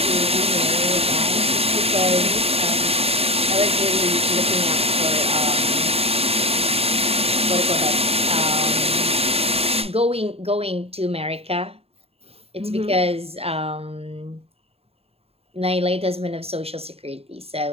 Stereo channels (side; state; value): left; late; 0.29 ms